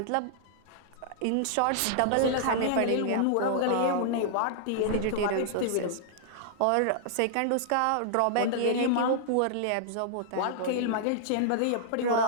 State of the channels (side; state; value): both; different; correlation -0.01